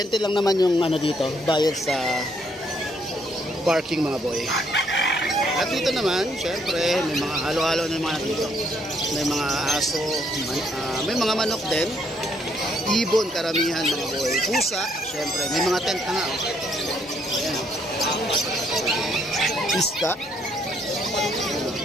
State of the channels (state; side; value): normal; both; correlation 0.70